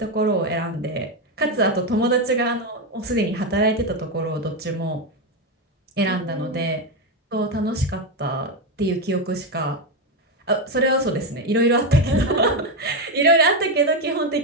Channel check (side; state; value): both; normal; correlation 0.10